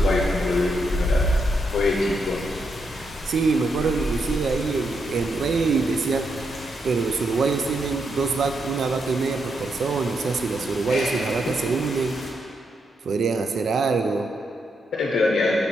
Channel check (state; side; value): normal; both; correlation 0.81